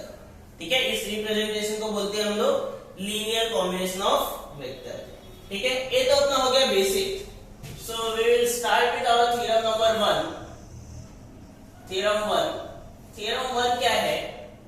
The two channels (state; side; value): identical; both; correlation 1.00